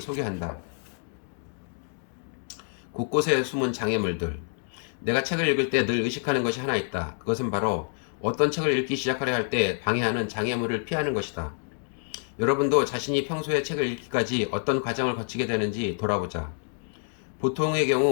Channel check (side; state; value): right; silent; 60 dB below the other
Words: 곳곳에 숨은 장애물들. 내가 책을 읽을 때 늘 의식하는 것이 하나 있다. 그것은 바로 어떤 책을 읽기 시작하려 할 때 방해하는 장애물을 피하는 것이다. 여러분도 자신이 평소에 책을 읽기까지 어떤 과정을 거치게 되는지 돌아보자. 보통의